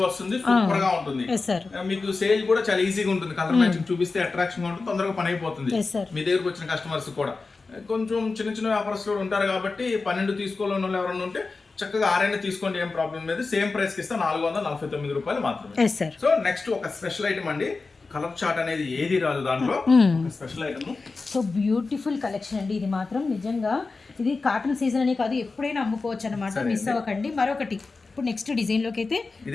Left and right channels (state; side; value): quieter; right; 4.0 dB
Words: వస్తుంది, సూపర్ గా ఉంటుంది. మీకు సేల్ కూడా చాలా ఈజీగా ఉంటుంది. కలర్ మ్యాచింగ్ చూపిస్తే అట్రాక్షన్ గా ఉంటుంది, తొందరగా పని అయిపోతుంది. మీ దగ్గరకు వచ్చిన కస్టమర్స్ కూడా కొంచెం చిన్న వ్యాపారస్తులు ఉంటారు కాబట్టి 12 తీసుకోవాలని వాళ్ళు ఎవరైనా ఉంటే చక్కగా 6 తీసుకోండి, ఏం ప్రాబ్లం లేదు. సేమ్ ప్రైస్ కి ఇస్తే 449 రూపాయలు మాత్రమే. సో నెక్స్ట్ ఒక స్పెషల్ ఐటమ్ అండి. కలర్ చార్ట్ అనేది ఏది రాదు దాంట్లో, special item. So beautiful collection అండి ఇది మాత్రం. నిజంగా ఇది కాటన్ సీజన్ అనే కాదు, ఎప్పుడైనా అమ్ముకోవచ్చు అనమాట. మిస్ అవ్వకండి. మరొకటి ఇప్పుడు నెక్స్ట్ డిజైన్ లోకి అయితే